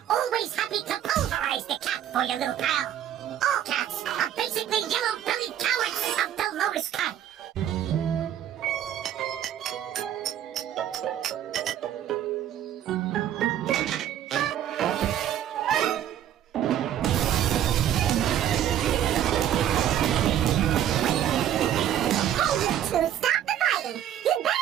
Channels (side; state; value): left; quieter; 10.8 dB